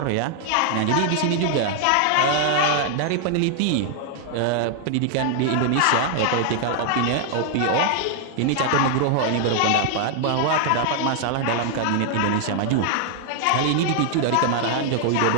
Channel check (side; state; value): both; different; correlation 0.00